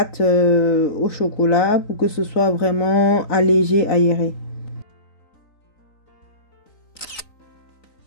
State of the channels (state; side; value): late; right; 3.9 ms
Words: au chocolat pour que ce soit vraiment allégé, aéré.